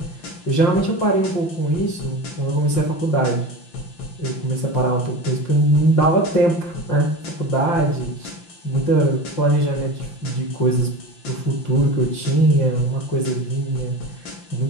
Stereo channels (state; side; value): late; right; 5.8 ms